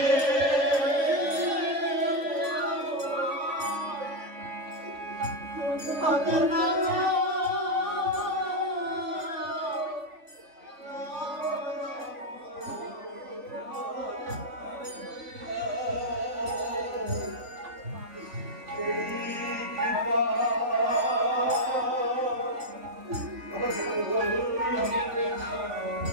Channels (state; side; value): late; left; 3.5 ms